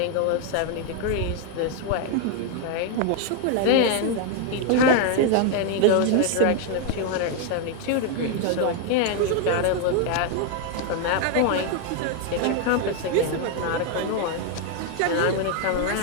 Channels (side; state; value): both; different; correlation 0.01